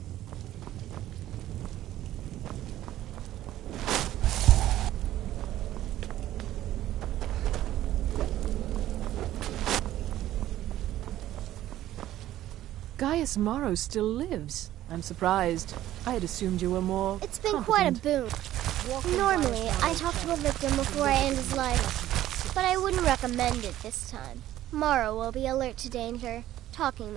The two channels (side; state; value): left; quieter; 13.6 dB